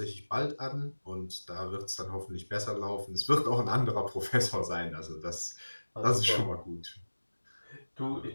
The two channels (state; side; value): inverted; both; correlation -1.00